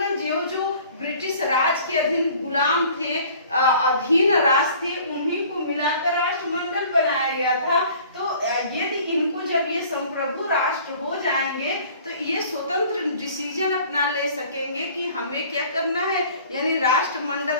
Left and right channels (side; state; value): both; inverted; correlation -0.50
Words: जो ब्रिटिश राज के अधीन गुलाम थे, अधीन राज थे, उन्हीं को मिलाकर राष्ट्रमंडल बनाया गया था। तो यदि इनको जब ये संप्रभु राष्ट्र हो जाएंगे तो ये स्वतंत्र डिसीजन अपना ले सकेंगे कि हमें क्या करना है, यानी राष्ट्रमंडल